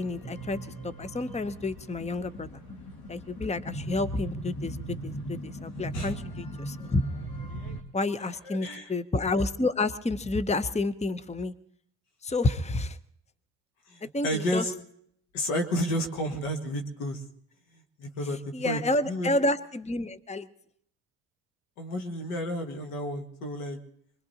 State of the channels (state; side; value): normal; both; correlation 0.48